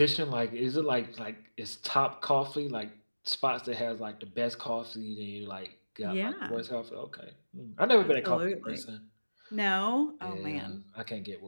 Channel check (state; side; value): inverted; both; correlation -1.00